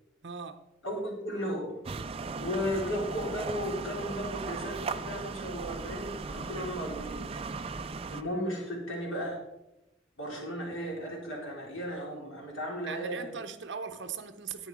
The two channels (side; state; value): both; normal; correlation 0.31